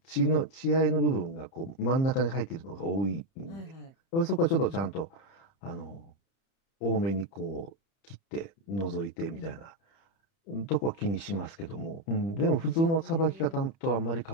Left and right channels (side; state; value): right; late; 30 ms